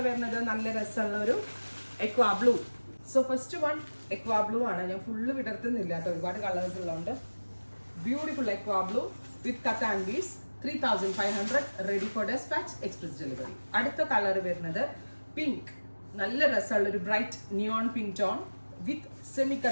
വരുന്നത് നല്ല രസമുള്ള ഒരു aqua blue. So first one aqua blue ആണ്. ഞാൻ ഫുള്ള് വിടർത്തുന്നില്ല കേട്ടോ, ഒരുപാട് കളേഴ്സ് ഉള്ളതുകൊണ്ട്. Beautiful aqua blue with katan beads, 3,500, ready for dispatch, express delivery. Adutha color varunathu pink, nalla rasalla oru bright neon pink tone with semi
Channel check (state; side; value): inverted; both; correlation -1.00